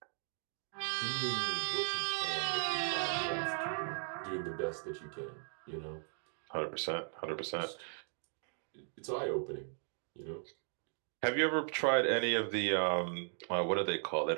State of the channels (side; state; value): left; silent; 53 dB below the other